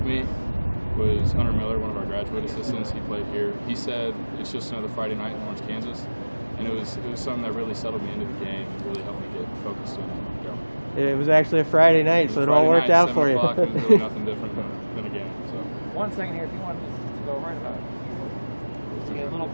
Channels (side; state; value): both; inverted; correlation -1.00